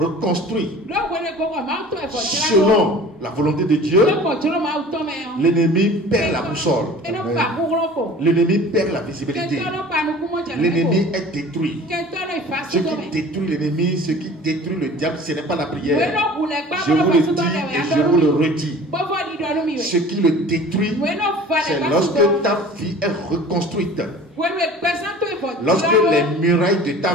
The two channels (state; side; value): normal; both; correlation 0.44